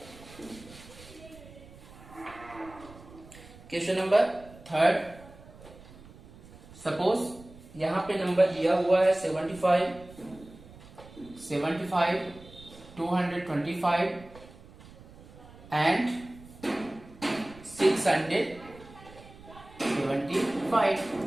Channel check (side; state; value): right; noise; rumble, 20 dB below the sound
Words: क्वेश्चन नंबर 3, सपोज यहां पे नंबर दिया हुआ है 75 225 एंड 675।